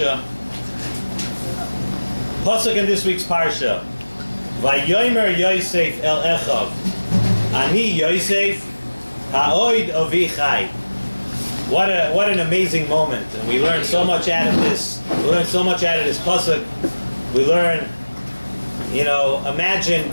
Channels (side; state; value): both; inverted; correlation -1.00